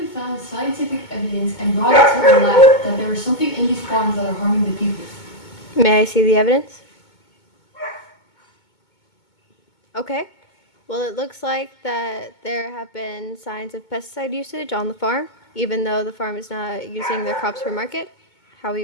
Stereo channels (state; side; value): late; right; 2.2 ms